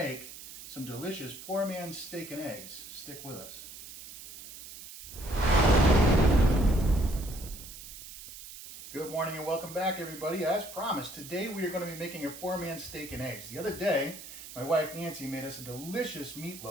some delicious poor man's steak and eggs. Stick with us. Good morning and welcome back, everybody. As promised, today we are going to be making a poor man's steak and eggs. The other day, my wife Nancy made us a delicious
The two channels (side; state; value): right; noise; hiss, 14 dB below the sound